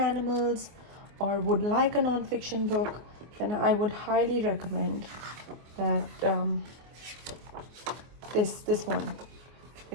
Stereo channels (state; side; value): late; left; 24 ms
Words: or would like a non-fiction book, then I would highly recommend that this one